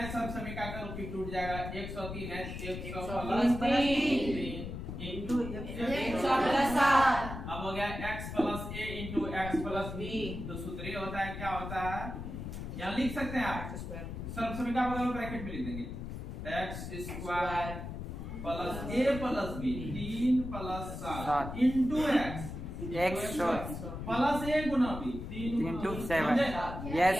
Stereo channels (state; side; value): noise; left; rumble, 7 dB below the sound